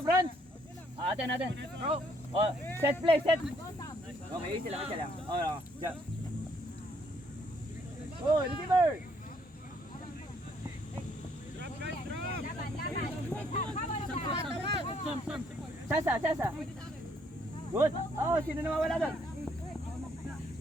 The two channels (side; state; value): both; normal; correlation 0.68